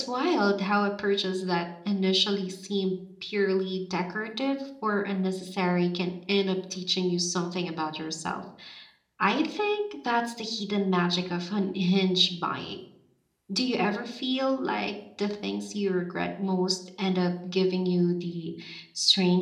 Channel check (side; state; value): both; identical; correlation 1.00